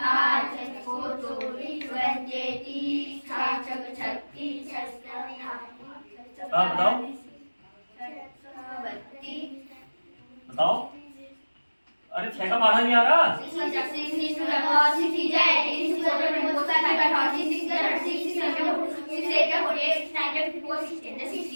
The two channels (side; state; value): both; inverted; correlation -1.00